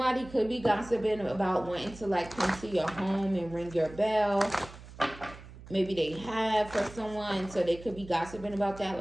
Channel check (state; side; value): noise; right; hum, 17 dB below the sound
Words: could be gossiping about wanting to like come to your home and ring your bell. Maybe they have for someone, so they could be gossiping about that.